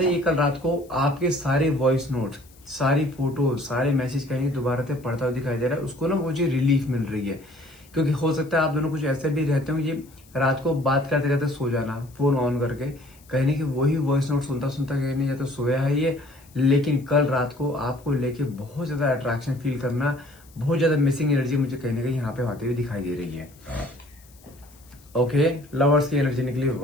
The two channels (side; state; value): left; noise; hiss, 27 dB below the sound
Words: हैं, ये कल रात को आपके सारे वॉइस नोट, सारी फोटो, सारे मैसेज कहीं दोबारा से पढ़ता हुआ दिखाई दे रहा है। उसको ना मुझे रिलीफ मिल रही है, क्योंकि हो सकता है आप दोनों कुछ ऐसे भी रहते हो, ये रात को बात करते करते सो जाना फोन ऑन करके, कहने की वही वॉइस नोट सुनता सुनता कहने या तो सोया है ये, लेकिन कल रात को आपको लेके बहुत ज्यादा अट्रैक्शन फील करना, बहुत ज्यादा मिसिंग एनर्जी मुझे कहीं ना कहीं यहाँ पे आते हुए दिखाई दे रही है। ओके, लवर्स की एनर्जी निकली,